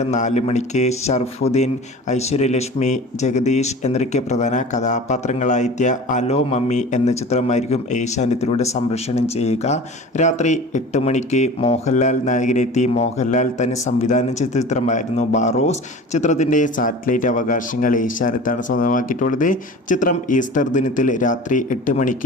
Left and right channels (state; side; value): normal; both; correlation 0.38